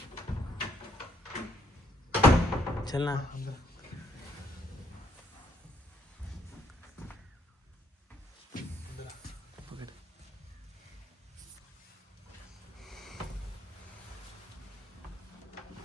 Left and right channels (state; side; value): normal; both; correlation 0.70